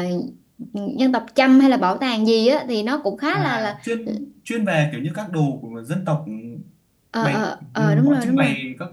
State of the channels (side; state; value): both; identical; correlation 1.00